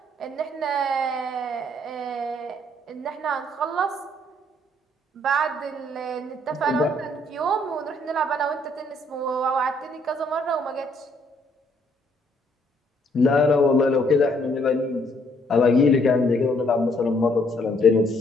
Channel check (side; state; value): both; normal; correlation 0.67